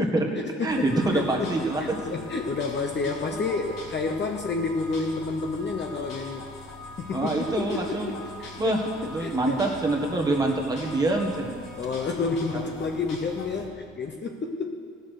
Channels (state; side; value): normal; both; correlation 0.55